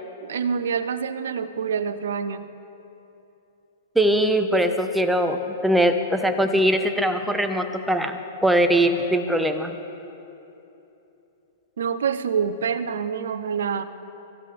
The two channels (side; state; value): both; normal; correlation 0.39